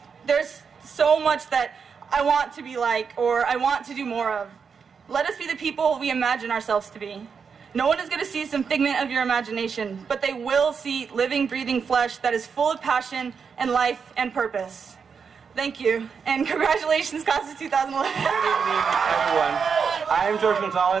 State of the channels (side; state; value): left; quieter; 6.1 dB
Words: There's so much that I want to be like, or I want to do more of. Let us be the people we imagine ourselves to be. No one is going to see some figment of your imagination, but they will see living, breathing flesh that is full of passion and life and purpose. Thank you, and congratulations, class of 2011. Good evening, everyone. I am George